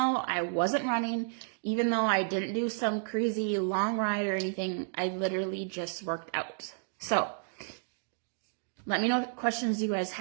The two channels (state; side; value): silent; left; digital silence